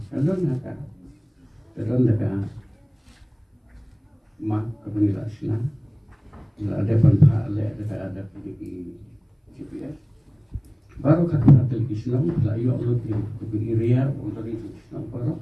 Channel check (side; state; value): both; identical; correlation 1.00